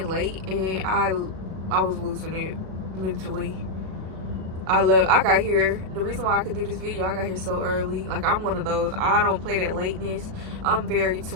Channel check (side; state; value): left; late; 37 ms